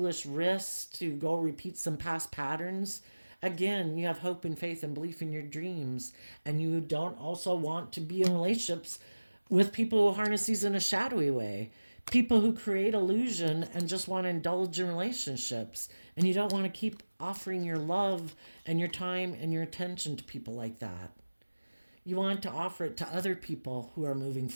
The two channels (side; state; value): both; inverted; correlation -1.00